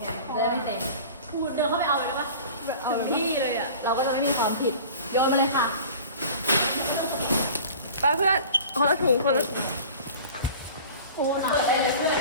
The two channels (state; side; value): inverted; both; correlation -0.41